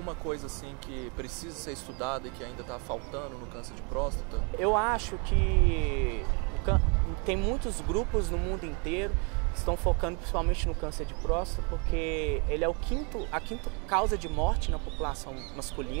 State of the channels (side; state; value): left; quieter; 34.7 dB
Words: coisa assim que precisa ser estudada e que ainda está faltando no câncer de próstata? Eu acho que tem muitos grupos no mundo inteiro que estão focando principalmente no câncer de próstata, porque ele é a quinta causa de morte na população